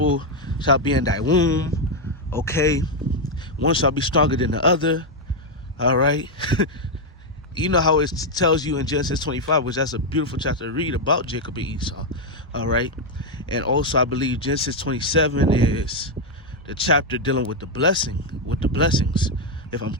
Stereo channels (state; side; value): normal; both; correlation 0.02